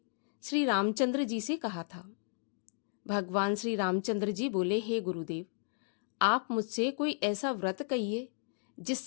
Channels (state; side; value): silent; right; digital silence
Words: श्री रामचंद्र जी से कहा था। भगवान श्री रामचंद्र जी बोले, हे गुरुदेव, आप मुझसे कोई ऐसा व्रत कहिए